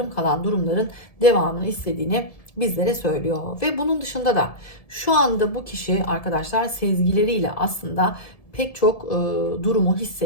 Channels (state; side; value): late; right; 1.7 ms